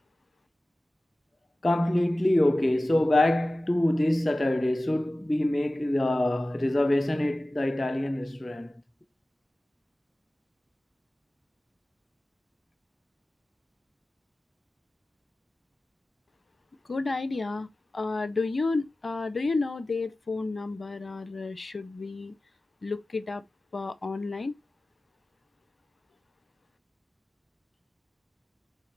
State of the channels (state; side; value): normal; both; correlation 0.97